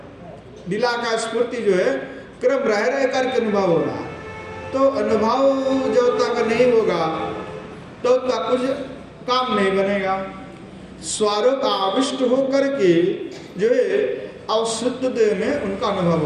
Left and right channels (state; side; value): identical; both; correlation 1.00